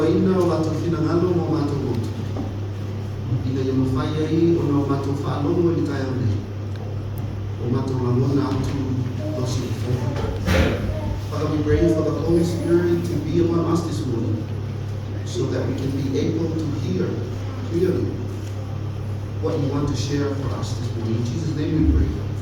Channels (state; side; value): identical; both; correlation 1.00